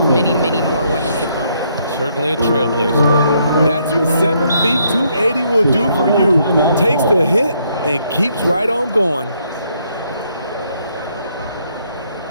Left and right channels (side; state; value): both; inverted; correlation -0.71